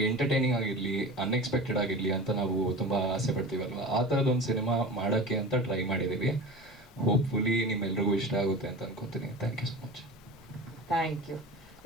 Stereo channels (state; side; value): normal; both; correlation 0.32